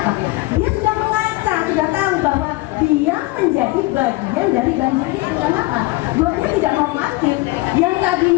Dia sudah mengaca, sudah tahu bahwa dia menjadi bagian dari banjir itu. Kenapa? Gotnya tidak normatif. Yang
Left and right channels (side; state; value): right; quieter; 21.1 dB